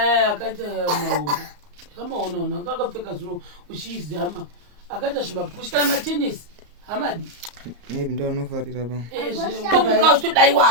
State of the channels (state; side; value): late; left; 34 ms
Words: akaita mahombe kamaonaona kakapfeka zviro uchizama akaita zvimapushi kana matenisi hamadi maybe ndo anofarira pa tomuka